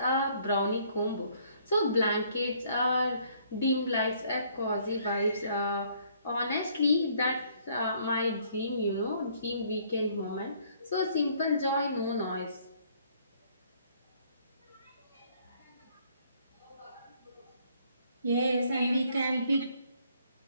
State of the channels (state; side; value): inverted; both; correlation -0.63